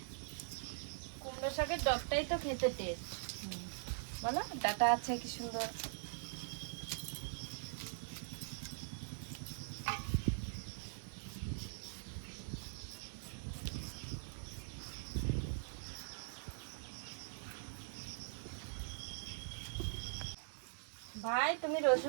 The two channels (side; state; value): left; silent; digital silence